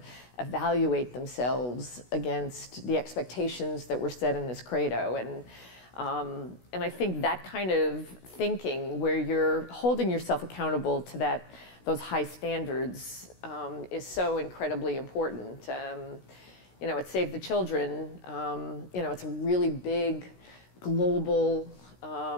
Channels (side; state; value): right; late; 16 ms